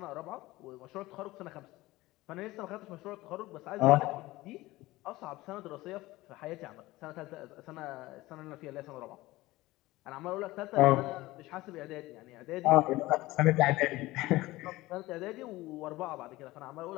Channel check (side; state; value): right; quieter; 18.7 dB